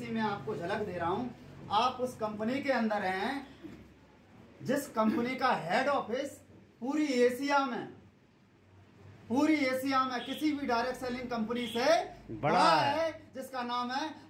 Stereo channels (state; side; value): identical; both; correlation 1.00